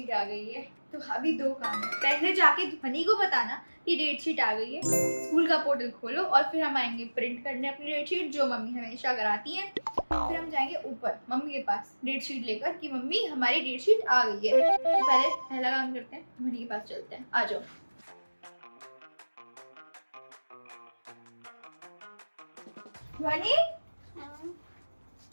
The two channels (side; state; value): both; inverted; correlation -1.00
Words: आ गई है। तो अभी दो काम है, पहले जाके ध्वनि को बताना कि डेट शीट आ गई है, स्कूल का पोर्टल खोलो, और फिर हम आएंगे प्रिंट करने अपनी डेट शीट, जो मम्मी हमेशा कराती हैं। फिर हम जाएंगे ऊपर मम्मी के पास डेट शीट लेकर कि मम्मी हमारी डेट शीट आ गई है। तो पहले पहला काम करते हैं, ध्वनि के पास चलते हैं, आ जाओ। ध्वनि